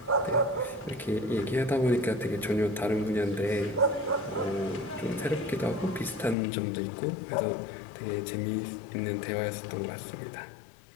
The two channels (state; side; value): drops out; right; at 6.4 s